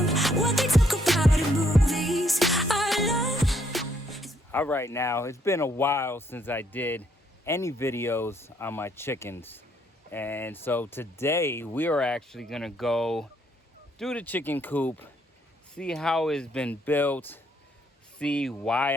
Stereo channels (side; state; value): both; normal; correlation 0.70